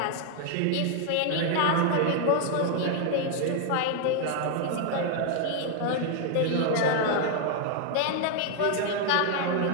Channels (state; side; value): different; both; correlation 0.00